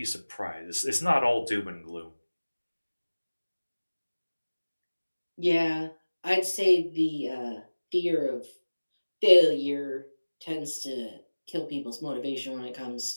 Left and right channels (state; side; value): inverted; both; correlation -1.00